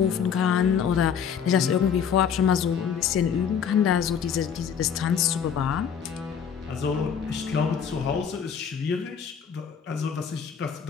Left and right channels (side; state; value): right; quieter; 7.4 dB